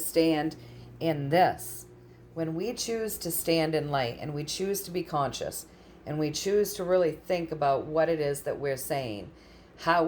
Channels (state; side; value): identical; both; correlation 1.00